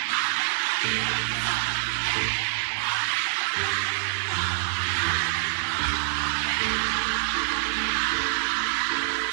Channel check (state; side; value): silent; left; digital silence